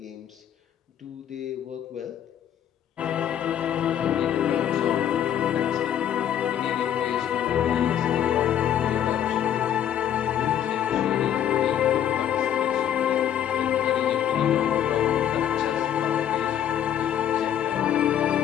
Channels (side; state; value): right; quieter; 10.2 dB